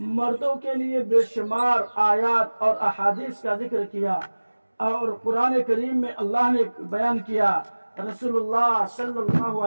مردوں کے لیے بے شمار آیات اور احادیث کا ذکر کیا، اور قرآن کریم میں اللہ نے بیان کیا، رسول اللہ صلی اللہ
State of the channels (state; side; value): inverted; both; correlation -1.00